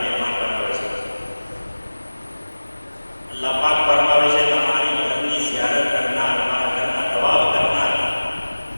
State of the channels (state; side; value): inverted; both; correlation -1.00